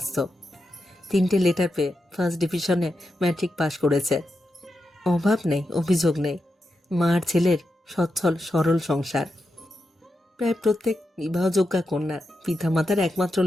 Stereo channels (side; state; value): both; normal; correlation 0.87